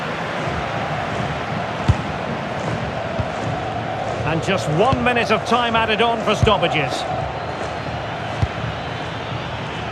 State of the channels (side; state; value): both; identical; correlation 1.00